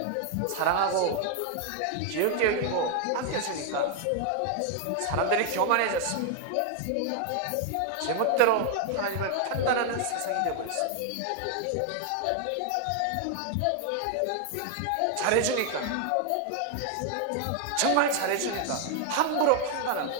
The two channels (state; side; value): different; both; correlation 0.00